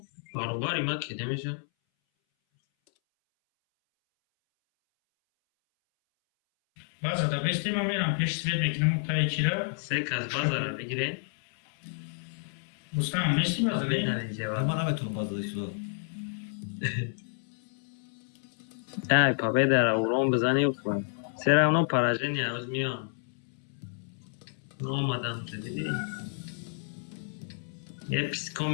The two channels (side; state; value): right; silent; 58 dB below the other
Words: باروباری ما کده میشه بازار دا بستیم هم میرم پیش سوید میکنم تایی چی را سه کس بازار بگیره بستم میستی بازار بهترین جواب من نمیتونم بازداشت شد. ای پاپه در اورام بزنی و کنم سر اونا پراجه نیاز میان آمدم تو دیدی یه پیسکا